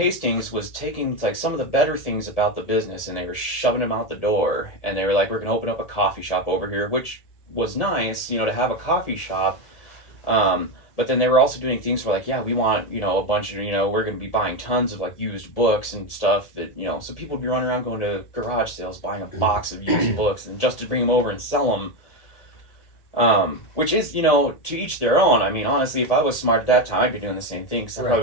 was taking like some of the better things about the business and they were shoving them out the door, and they were like, we're gonna open up a coffee shop over here, which was nice, to have a coffee shop. But then they were also doing things where like, yeah, we want, a bunch of, we're gonna be buying tons of like used books and stuff that, so people would be running around going to garage sales buying a box of used books and just to bring them over and sell them. Which is, to each their own. I mean, honestly, if I was smart at that time, I'd be doing the same thing because I probably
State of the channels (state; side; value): late; right; 1.8 ms